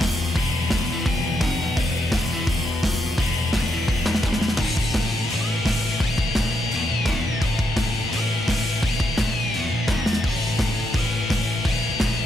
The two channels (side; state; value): both; normal; correlation 0.79